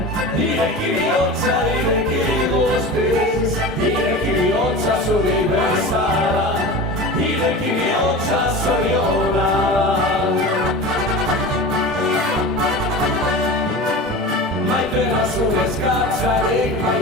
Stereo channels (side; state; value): both; normal; correlation 0.31